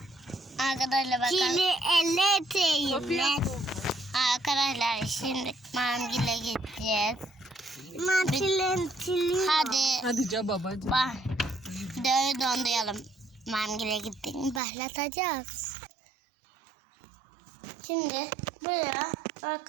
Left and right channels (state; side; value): drops out; left; at 14.6 s